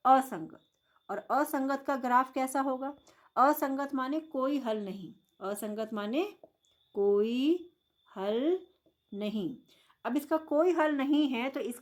असंगत। और असंगत का ग्राफ कैसा होगा? असंगत माने कोई हल नहीं, असंगत माने कोई हल नहीं। अब इसका कोई हल नहीं है तो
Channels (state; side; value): identical; both; correlation 1.00